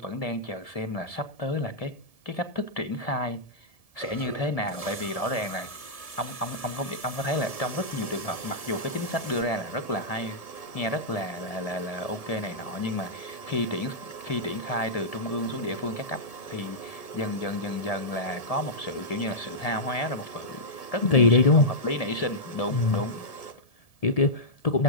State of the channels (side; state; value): right; late; 1.7 ms